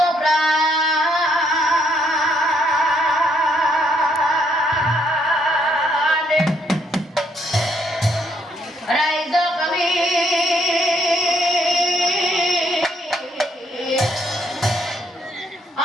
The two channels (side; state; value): both; normal; correlation 0.71